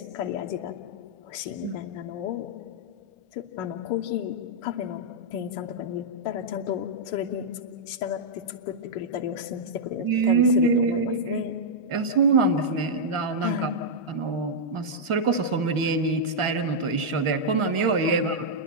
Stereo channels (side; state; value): left; late; 1.4 ms